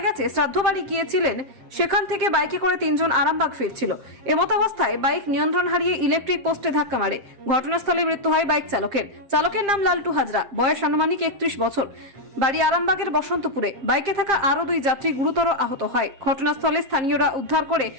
গেছে শ্রাদ্ধ বাড়ি গিয়েছিলেন, সেখান থেকে বাইকে করে তিনজন আরামবাগ ফিরছিল। এমতাবস্থায় বাইক নিয়ন্ত্রণ হারিয়ে ইলেকট্রিক পোস্টে ধাক্কা মারে। ঘটনাস্থলে মৃত্যু হয় বাইক চালকের। চালকের নাম লালটু হাজরা, বয়স আনুমানিক 31 বছর, বাড়ি আরামবাগের বসন্তপুরে। বাইকে থাকা আরো দুই যাত্রী গুরুতর আহত হয়। ঘটনাস্থলে স্থানীয়রা উদ্ধার করে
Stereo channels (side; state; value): left; late; 7.5 ms